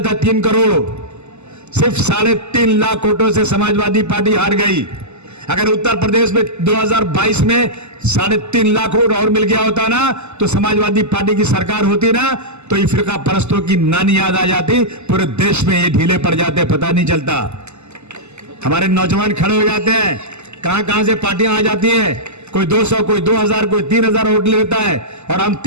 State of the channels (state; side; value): late; left; 0.82 ms